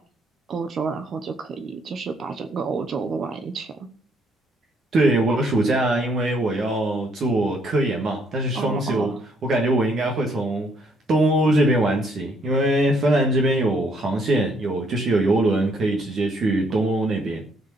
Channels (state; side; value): normal; both; correlation 0.69